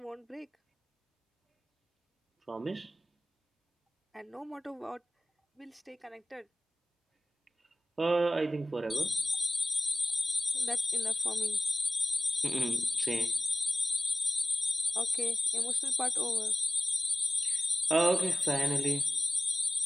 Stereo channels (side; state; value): both; normal; correlation 0.96